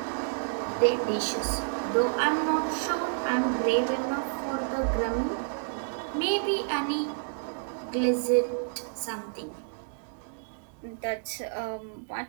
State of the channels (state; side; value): silent; left; digital silence